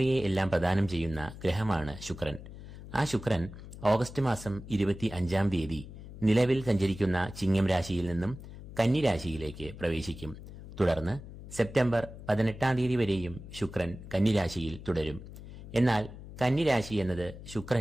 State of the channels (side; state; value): left; noise; hum, 14 dB below the sound